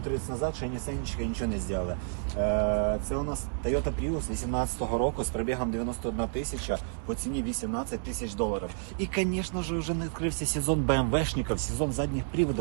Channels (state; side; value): silent; left; 58 dB below the other